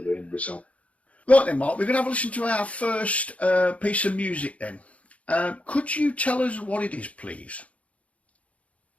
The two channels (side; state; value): right; late; 0.065 ms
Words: the end result. Right then, Mark, we're going to have a listen to our first piece of music then. Could you tell us what it is, please?